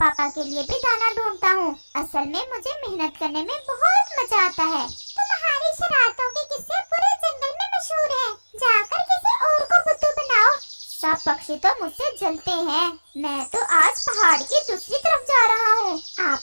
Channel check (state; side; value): inverted; both; correlation -1.00